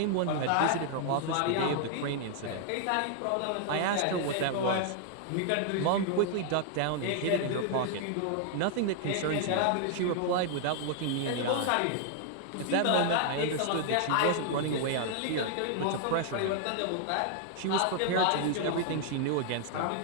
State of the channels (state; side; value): different; both; correlation 0.00